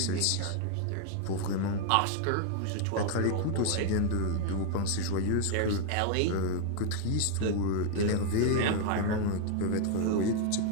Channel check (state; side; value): different; both; correlation 0.00